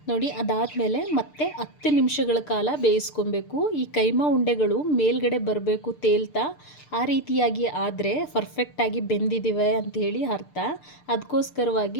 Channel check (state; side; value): late; right; 6.7 ms